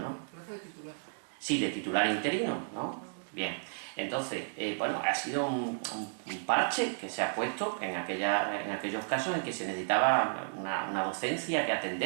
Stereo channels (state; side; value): silent; left; digital silence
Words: Plaza de titular. Sí, de titular interino, ¿no? Bien. Entonces, bueno, ha sido un parche que se ha puesto en aquellos casos en que se necesitaba una docencia que